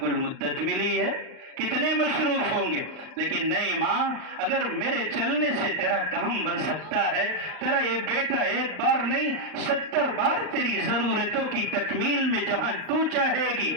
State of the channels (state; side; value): late; left; 39 ms